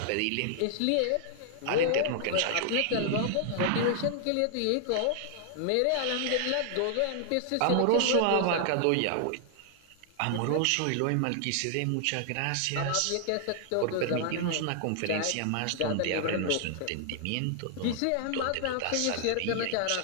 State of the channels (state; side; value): different; both; correlation -0.01